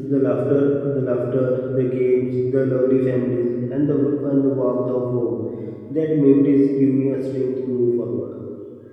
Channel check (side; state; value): both; identical; correlation 1.00